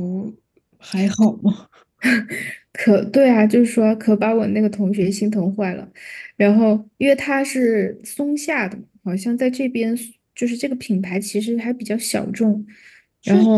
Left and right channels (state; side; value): identical; both; correlation 1.00